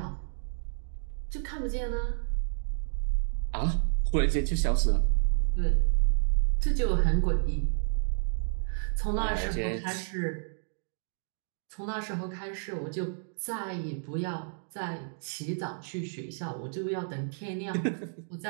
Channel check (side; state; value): left; silent; digital silence